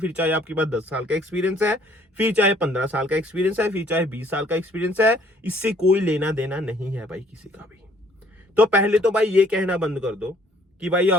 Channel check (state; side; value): normal; both; correlation 0.60